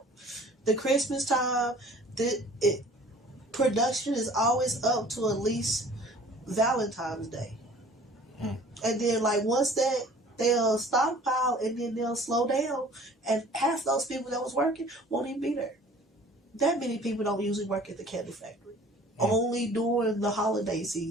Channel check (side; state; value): both; normal; correlation 0.49